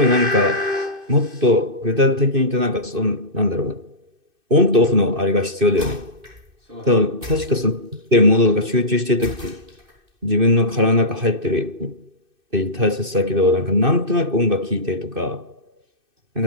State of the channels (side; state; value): left; late; 2.6 ms